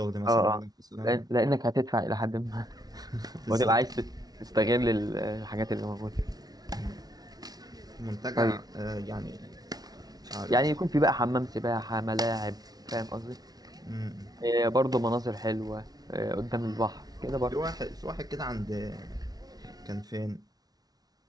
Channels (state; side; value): late; left; 0.19 ms